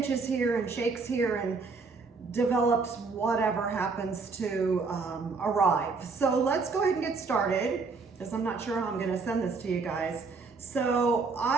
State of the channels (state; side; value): quieter; left; 4.4 dB